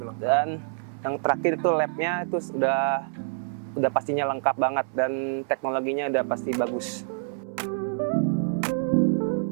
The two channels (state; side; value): silent; left; 61 dB below the other